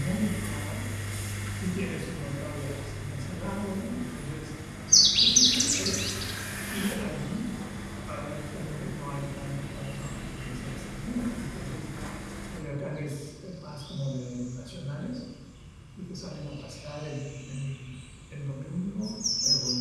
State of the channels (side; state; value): both; identical; correlation 1.00